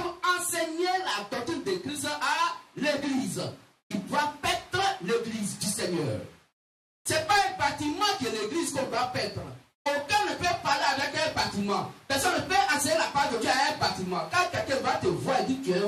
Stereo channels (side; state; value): both; identical; correlation 1.00